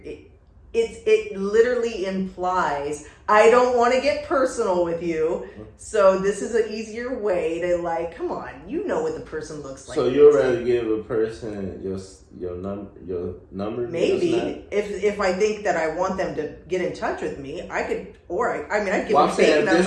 literally implies I don't want to get personal with you, so this is an easier way to like, come on, you know what the person looks like. So you'd rather give a person your number? Maybe if I think that I want them to get in touch with me, I could, or I'd give them fake saying numbers.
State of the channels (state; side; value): identical; both; correlation 1.00